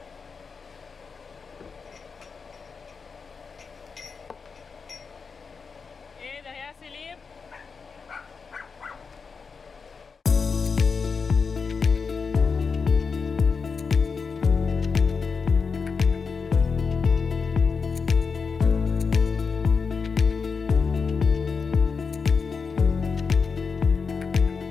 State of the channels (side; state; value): right; quieter; 5.3 dB